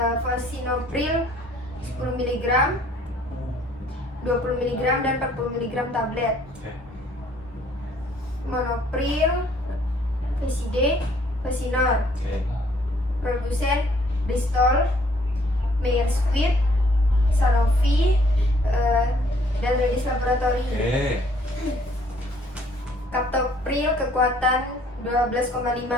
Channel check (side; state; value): both; normal; correlation 0.62